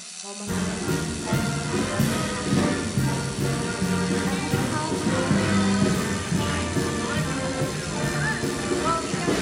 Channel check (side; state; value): both; identical; correlation 1.00